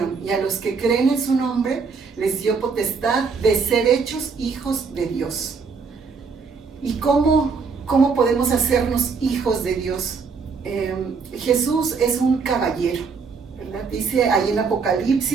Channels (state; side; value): quieter; left; 5.1 dB